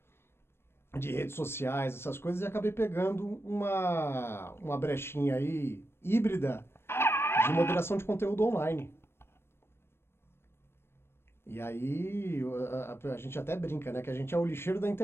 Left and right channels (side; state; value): right; late; 0.12 ms